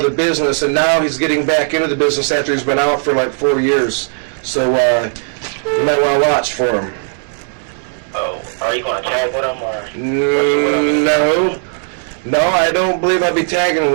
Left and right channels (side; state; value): left; silent; digital silence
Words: the business, and now he's getting back into the business after he's been out for like 4 years. So you might want to watch for him. Oh, are you going to tag with him or? No, I don't believe I'll be tagging